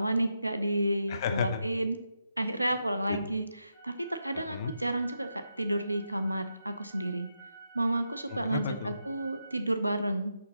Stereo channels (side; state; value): both; inverted; correlation -0.84